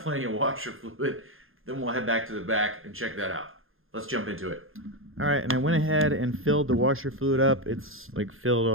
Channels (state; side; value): late; left; 0.60 ms